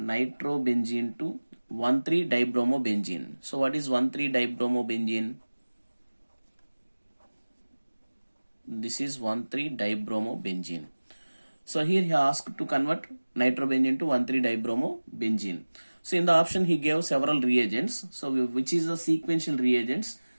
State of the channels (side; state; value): both; inverted; correlation -1.00